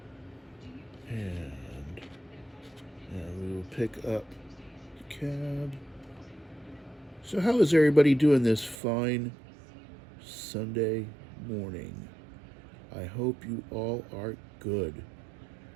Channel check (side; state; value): left; drops out; at 8.8 s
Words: And we will pick up the cab. So how is everybody doing this fine Sunday morning? I hope you all are good.